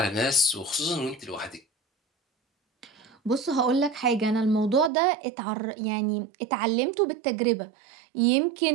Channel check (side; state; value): left; drops out; at 4.9 s